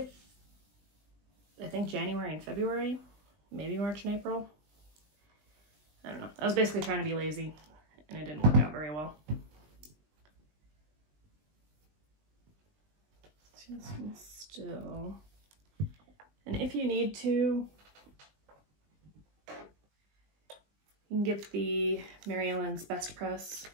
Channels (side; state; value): left; late; 20 ms